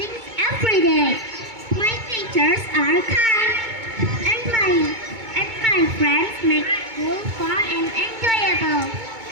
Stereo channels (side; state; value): left; late; 2.2 ms